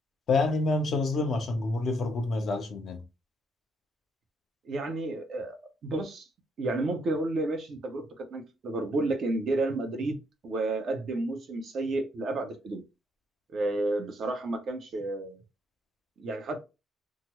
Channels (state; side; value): normal; both; correlation 0.72